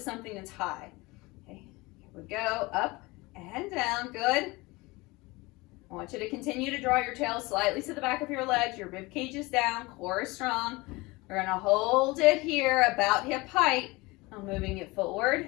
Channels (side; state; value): right; quieter; 23.1 dB